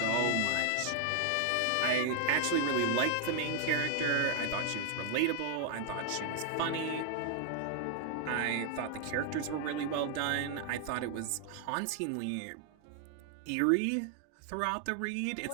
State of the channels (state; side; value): different; both; correlation 0.00